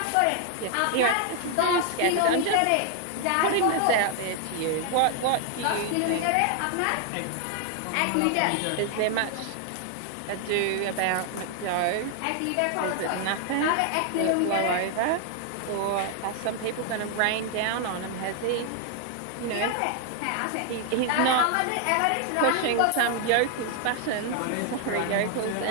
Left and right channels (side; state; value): both; different; correlation 0.00